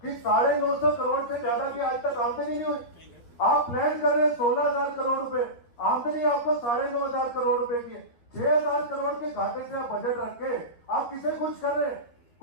कि 950 करोड़ से ज्यादा की आज तक आमदनी नहीं हुई। आप प्लान कर रहे हैं 16,000 करोड़ रुपए, आमदनी आपको 9,500 करोड़ रुपए की है। 6,000 करोड़ के घाटे से आप बजट रख के आप किसे खुश कर रहे हैं?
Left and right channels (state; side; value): late; right; 13 ms